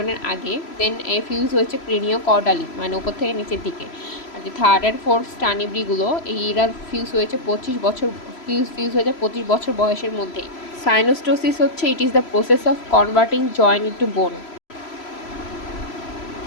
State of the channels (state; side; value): late; right; 3.0 ms